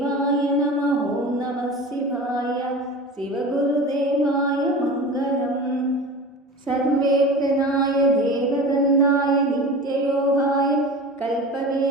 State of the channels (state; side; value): normal; both; correlation 0.34